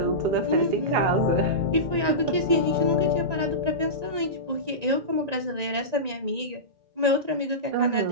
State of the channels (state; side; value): late; left; 1.9 ms